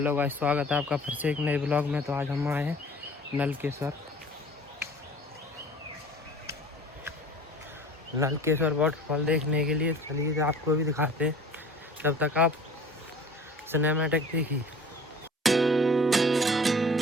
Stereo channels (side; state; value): both; normal; correlation 0.45